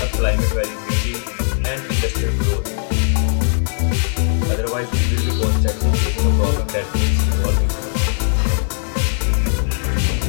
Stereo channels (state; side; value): silent; right; digital silence